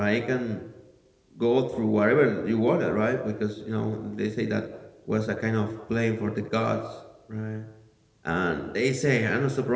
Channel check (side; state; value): both; identical; correlation 1.00